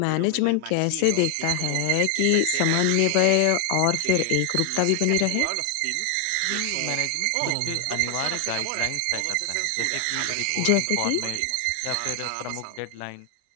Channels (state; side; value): different; both; correlation 0.00